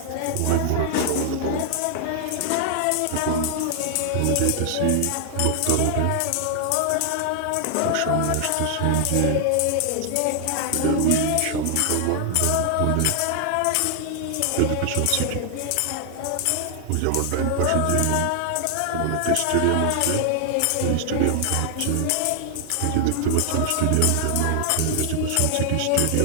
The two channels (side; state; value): both; different; correlation 0.00